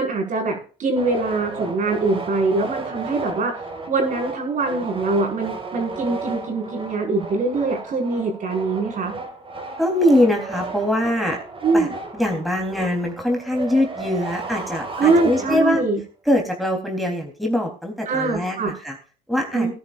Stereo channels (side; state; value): both; normal; correlation 0.61